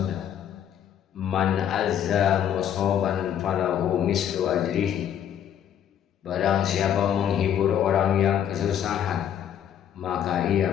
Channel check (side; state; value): right; quieter; 9.6 dB